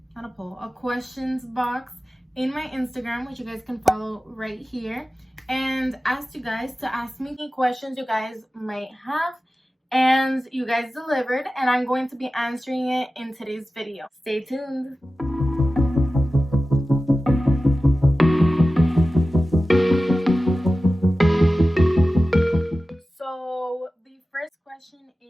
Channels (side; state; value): both; normal; correlation 0.95